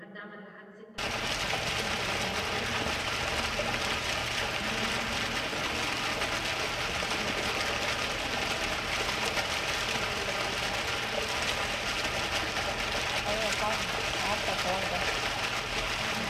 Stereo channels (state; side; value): identical; both; correlation 1.00